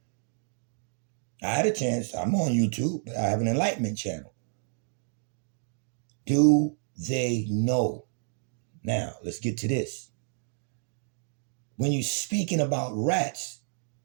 I had a chance. I'm on YouTube, but I have an enlightenment channel. Do they know? Now, let's get to this. When you're speaking about rats,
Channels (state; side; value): silent; left; digital silence